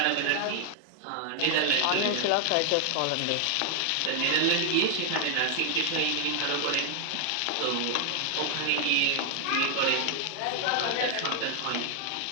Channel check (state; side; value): different; both; correlation 0.00